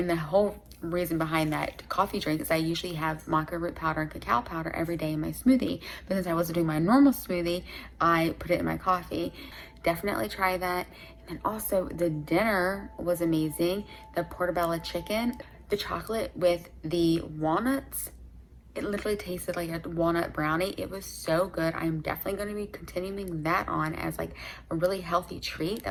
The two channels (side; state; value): both; identical; correlation 1.00